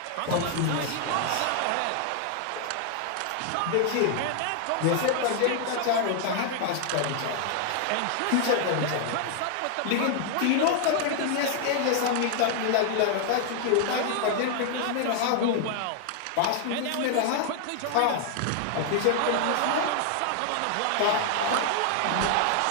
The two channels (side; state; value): both; different; correlation 0.00